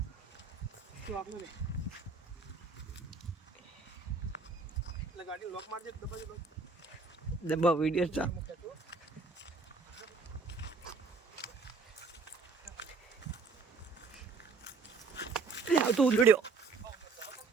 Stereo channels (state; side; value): quieter; left; 4.4 dB